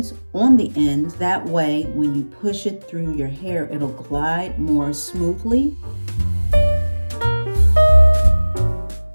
on the ends. That way, when you push it through your hair, it'll glide more smoothly.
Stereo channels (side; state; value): both; inverted; correlation -1.00